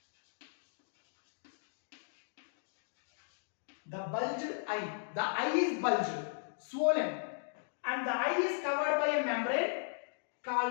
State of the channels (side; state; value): right; silent; digital silence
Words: The bulged eye, the eye is bulged, swollen, and the eye is covered by a membrane